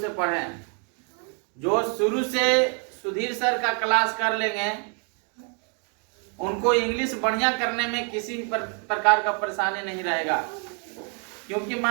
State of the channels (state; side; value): quieter; left; 40.0 dB